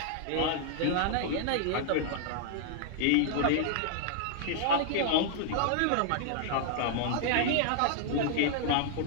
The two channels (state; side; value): different; both; correlation -0.01